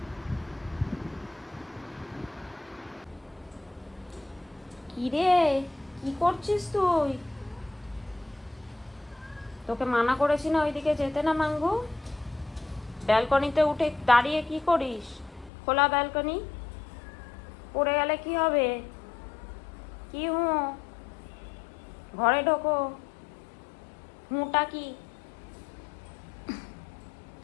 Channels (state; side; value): drops out; right; at 15.5 s